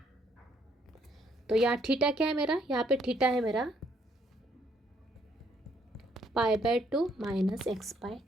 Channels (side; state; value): both; normal; correlation 0.69